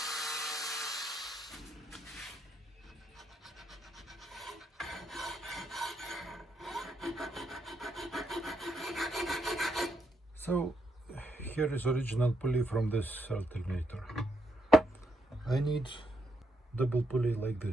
So here is original pulley from this alternator. I need double pulley like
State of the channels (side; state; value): both; normal; correlation 0.78